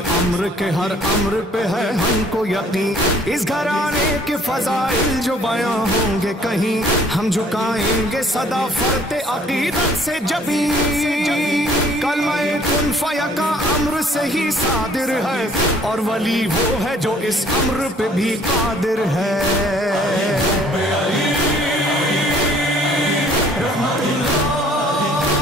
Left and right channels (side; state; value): both; normal; correlation 0.58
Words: امر کے ہر امر پہ ہے ہم کو یقین، اس گھرانے کے فضائل جو بیاں ہوں گے کہیں، ہم جھکائیں گے صدا فرت عقیدت سے جبیں، کلمہ کن فیکا امر سے ہی صادر ہے، اور ولی وہ ہے جو اس امر پہ بھی قادر ہے۔